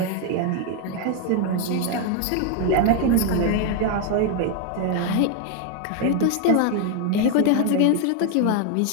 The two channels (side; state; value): both; different; correlation 0.01